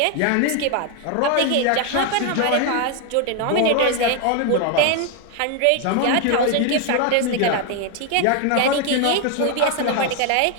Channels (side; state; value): both; different; correlation 0.01